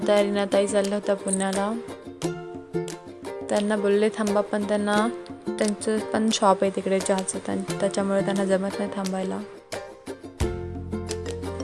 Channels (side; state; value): both; identical; correlation 1.00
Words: रीनाताई चालल्या होत्या पुण्याला. त्यांना बोलले थांबा, पण त्यांचं पण शॉप आहे तिकडे चहाचं, त्याच्यामुळे त्यांना जमत नाही थांबायला.